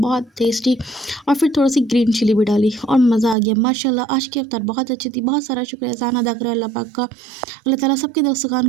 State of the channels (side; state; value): left; drops out; at 3.4 s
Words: टेस्टी। और फिर थोड़ी सी ग्रीन चिली भी डाली और मज़ा आ गया माशाल्लाह। आज की अफ्तार बहुत अच्छी थी, बहुत सारा शुक्र एहसान अदा करो अल्लाह पाक का। अल्लाह ताला सबके दस्तरखान